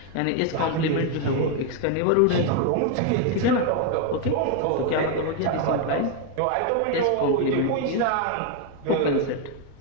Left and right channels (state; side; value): different; both; correlation 0.01